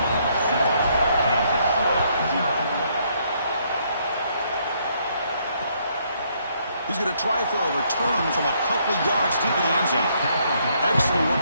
He's going to try for a return from a couple yards deep in the end zone. Excellent work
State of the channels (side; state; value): both; inverted; correlation -0.70